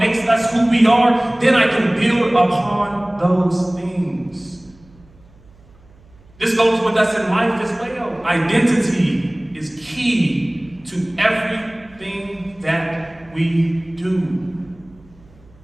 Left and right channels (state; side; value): noise; right; hum, 27 dB below the sound